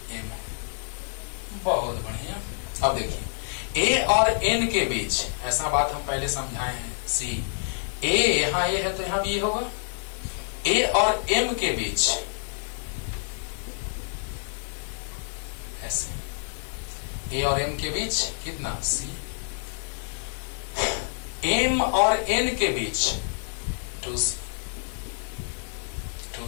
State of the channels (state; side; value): silent; right; 60 dB below the other